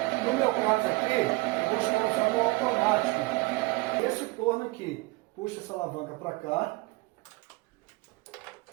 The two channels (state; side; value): quieter; left; 23.6 dB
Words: No meu caso aqui, eu vou estar usando o automático. Esse torno aqui, puxa essa alavanca para cá